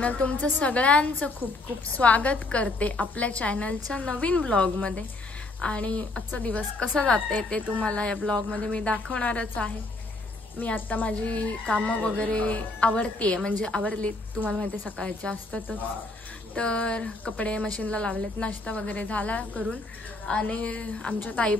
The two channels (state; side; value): quieter; right; 3.1 dB